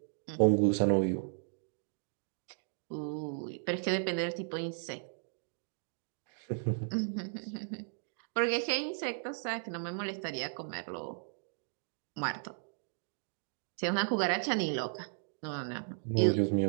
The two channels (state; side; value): silent; left; digital silence